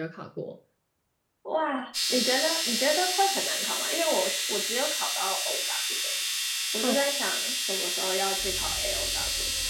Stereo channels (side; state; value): both; identical; correlation 1.00